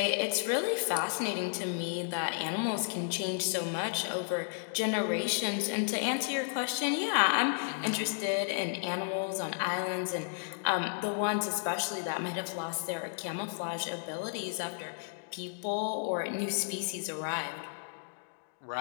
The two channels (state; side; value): silent; right; digital silence